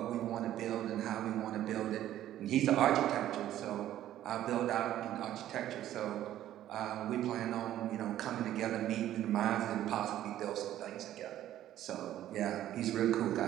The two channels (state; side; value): quieter; left; 12.6 dB